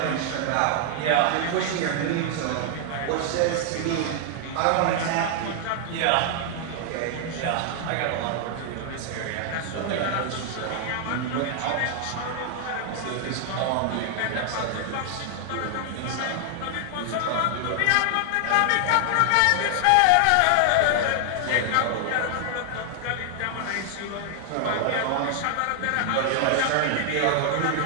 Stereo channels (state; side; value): different; both; correlation 0.00